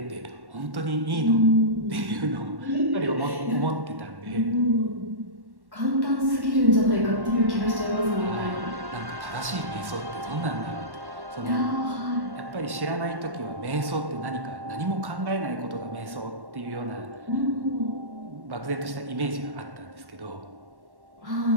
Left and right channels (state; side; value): late; left; 1.1 ms